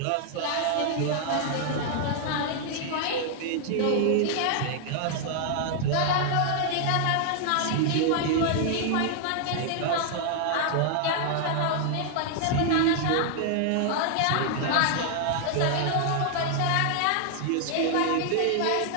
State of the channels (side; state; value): both; different; correlation 0.00